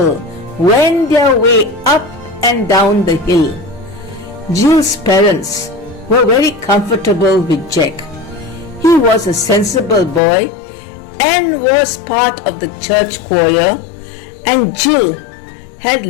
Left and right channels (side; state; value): right; drops out; at 10.2 s